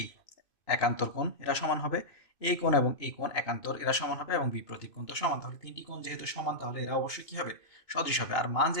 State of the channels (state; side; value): late; right; 2.6 ms